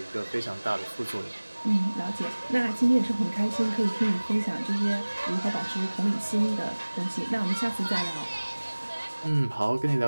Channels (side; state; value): both; inverted; correlation -1.00